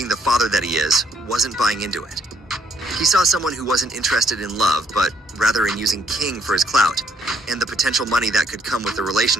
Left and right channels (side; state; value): both; normal; correlation 0.68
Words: the father that he is, wasn't buying into it. He saw someone who wasn't interested in love, but rather in using King for his clout, and the potential money that could come with the